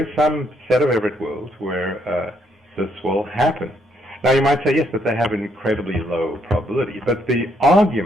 some set of Everett worlds where this will happen. Now, you might say, yes, but they have an incredibly low probability. But the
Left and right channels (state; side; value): normal; both; correlation 0.72